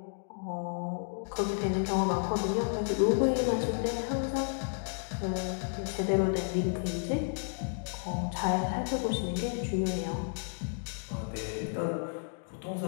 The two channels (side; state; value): right; silent; digital silence